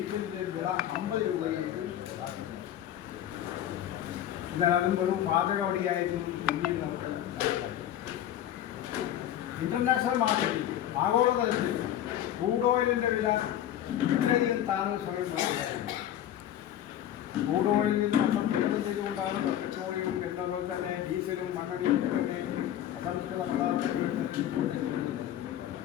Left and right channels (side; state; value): right; quieter; 11.5 dB